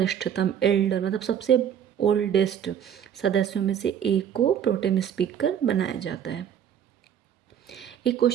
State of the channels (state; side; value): quieter; left; 9.1 dB